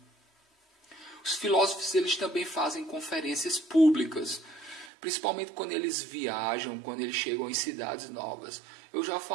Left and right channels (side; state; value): left; drops out; at 4.9 s